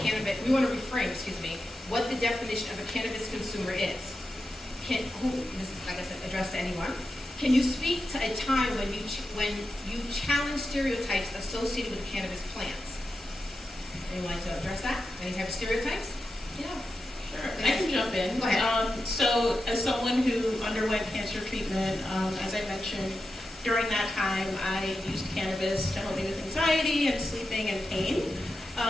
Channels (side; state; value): both; normal; correlation 0.90